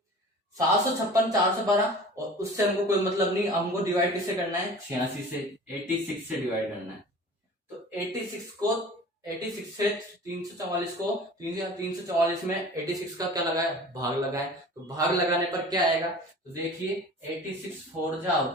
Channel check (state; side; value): normal; both; correlation 0.41